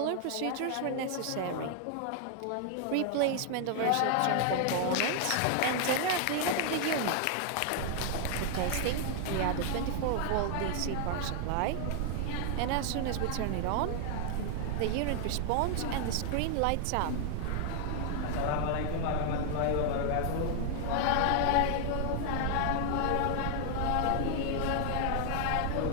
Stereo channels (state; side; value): different; both; correlation 0.00